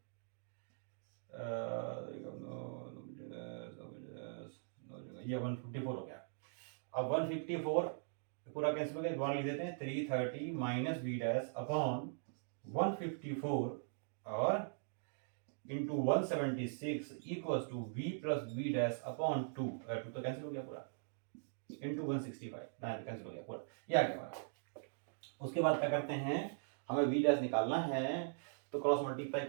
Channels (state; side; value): silent; left; digital silence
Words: ये 154 हो गया। अब 154 पूरा कैंसिल हो गया, दोबारा लिख देते हैं 330 माइनस वी डैश अपॉन 154 और into 176 equals to V plus V dash upon 2 तो कैंसिल हो गया पूरा, इंटू 165 कैंसिल हो गया पूरा, ये आ गया हमारा। उसके बाद क्या करते हैं, हमें वी डैश निकालना है तो क्रॉस मल्टीप्लाई